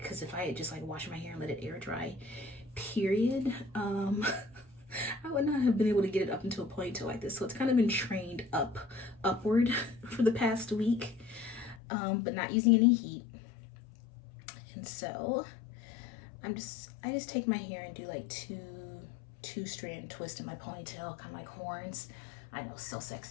cause if I had just like washed my hair and let it air dry, period, I would not have been able to get it up into a ponytail like this. So it's kind of been trained upward for the past week, but not using any heat. And so I just take my hair and do like two-strand twist in my ponytail, kind of like horns. I know, so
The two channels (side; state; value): right; drops out; at 11.8 s